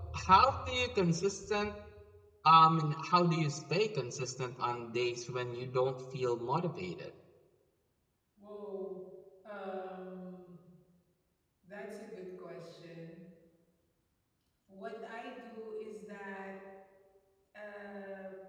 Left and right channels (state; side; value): identical; both; correlation 1.00